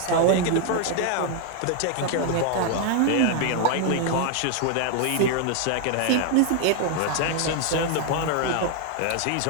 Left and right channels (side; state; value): both; different; correlation 0.00